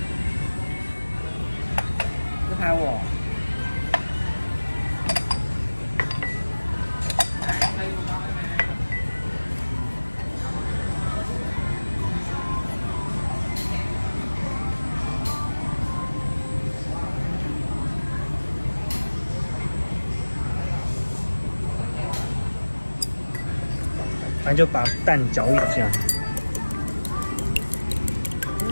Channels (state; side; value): inverted; both; correlation -1.00